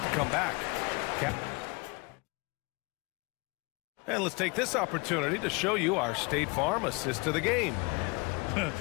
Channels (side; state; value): right; quieter; 28.6 dB